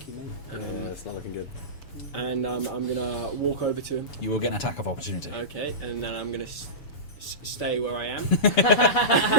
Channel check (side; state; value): right; late; 7.1 ms